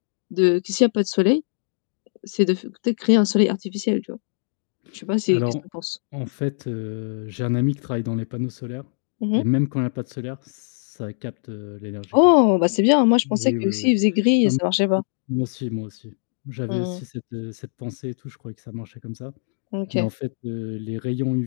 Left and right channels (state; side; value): silent; right; digital silence